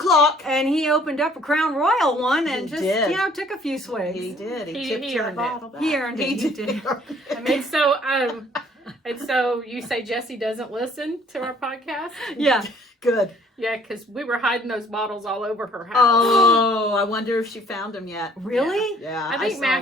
And he opened up a Crown Royal one and He just, did. Took a few swigs. He did. He tipped you the earned it. bottle back. He earned it. He did. I mean, And so you say Jesse doesn't listen to our podcast? Yeah. good. Yeah, because we were hiding those bottles all over her house. Oh, I wonder if she found them yet. Really? Yeah. I think saw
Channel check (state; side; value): normal; both; correlation 0.58